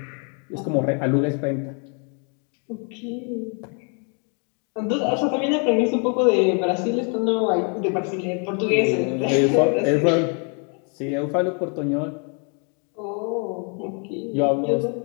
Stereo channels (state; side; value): quieter; right; 39.3 dB